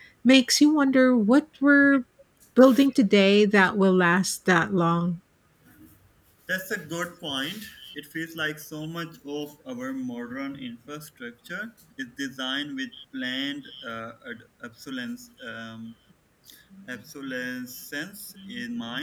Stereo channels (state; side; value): identical; both; correlation 1.00